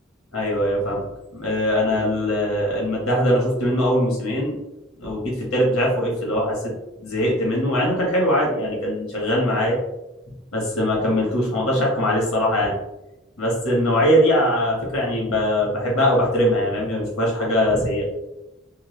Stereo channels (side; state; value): both; normal; correlation 0.38